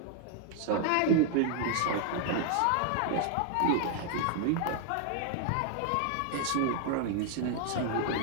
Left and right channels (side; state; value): both; different; correlation 0.00